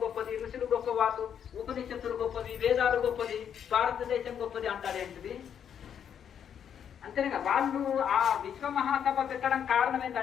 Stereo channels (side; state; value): right; quieter; 8.5 dB